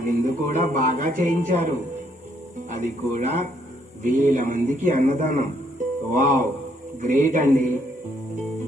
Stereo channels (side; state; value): both; normal; correlation 0.70